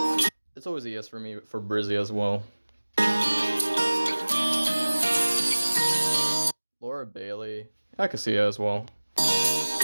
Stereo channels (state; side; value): inverted; both; correlation -1.00